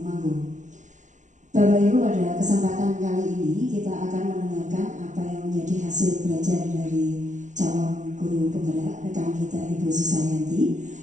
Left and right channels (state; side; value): late; left; 0.36 ms